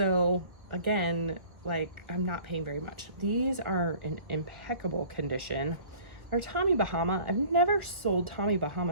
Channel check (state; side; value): late; left; 1.5 ms